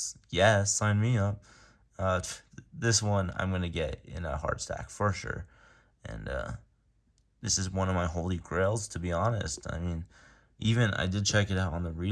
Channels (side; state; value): both; identical; correlation 1.00